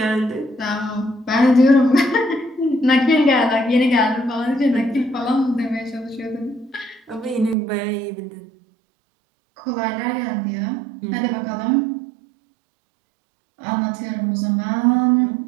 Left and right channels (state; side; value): drops out; left; at 7.6 s